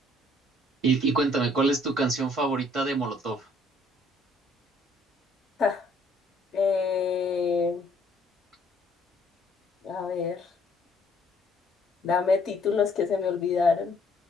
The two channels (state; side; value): normal; both; correlation 0.63